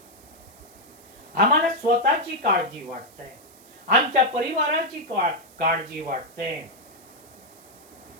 आम्हाला स्वतःची काळजी वाटते, आमच्या परिवाराची काळजी वाटते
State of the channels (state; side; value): noise; right; hiss, 24 dB below the sound